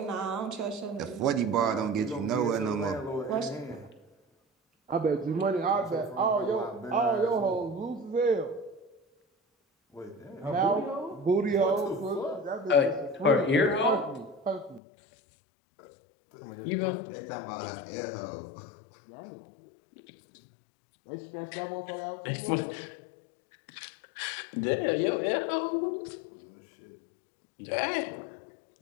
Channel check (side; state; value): right; drops out; at 14.8 s